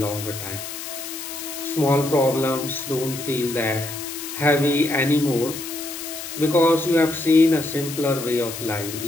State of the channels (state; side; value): noise; left; hiss, 9 dB below the sound